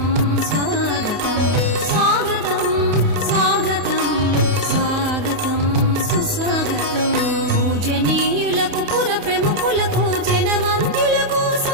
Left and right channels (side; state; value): left; late; 28 ms